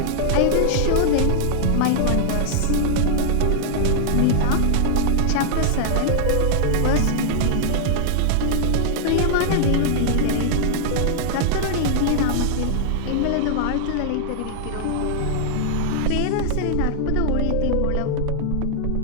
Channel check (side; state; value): both; different; correlation -0.01